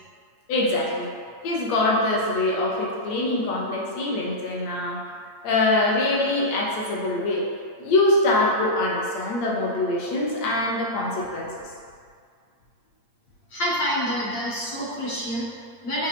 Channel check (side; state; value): right; late; 8.6 ms